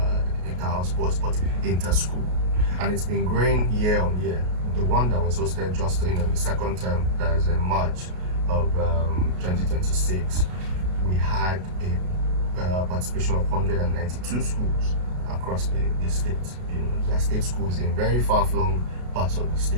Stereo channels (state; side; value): late; left; 33 ms